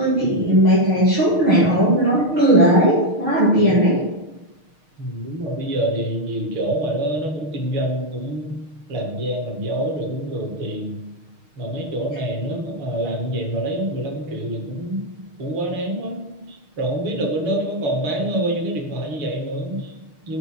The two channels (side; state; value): left; late; 6.5 ms